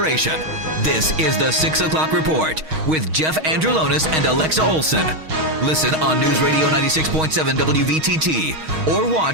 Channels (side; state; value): left; late; 6.4 ms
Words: this is the 6 o'clock report with Jeff Andrulonis and Alexa Olson. Listen on News Radio 96.7 WVTT or